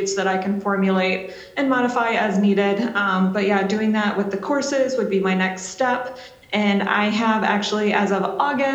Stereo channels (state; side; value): identical; both; correlation 1.00